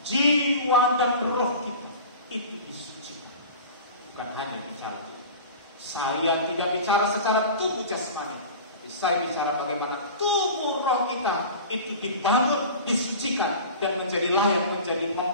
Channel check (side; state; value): both; inverted; correlation -0.36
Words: Jiwa dan roh kita itu disucikan. Bukan hanya bicara itu. Saya tidak bicara secara tubuh jasmani, tapi saya bicara bagaimana tubuh roh kita itu dibangun, disucikan, dan menjadi layak menjadi